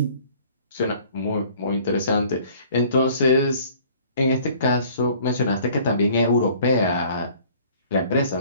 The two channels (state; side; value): inverted; both; correlation -0.54